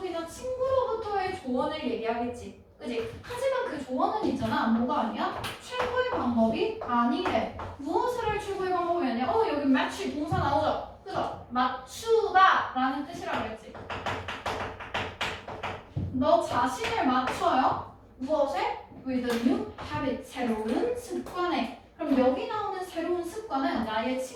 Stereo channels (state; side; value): identical; both; correlation 1.00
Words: 친구로부터의 조언을 얘기하겠지. 그지? 하지만 그 조언은 있잖아. 뭐가 아니야? 최고의 방법이 아니래. 무엇을 할 최고의 방법이 아니야? 여기 match 동사 나오죠? 그죠? 맞추다 라는 뜻이라고 했지. 너 자신을 맞춰요. 무엇에? with a new habit 새로운 습관에. 그럼 여기 나오는 새로운 습관은 나의